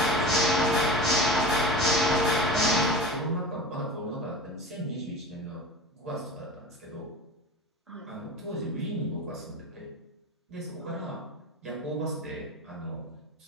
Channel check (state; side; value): normal; both; correlation 0.33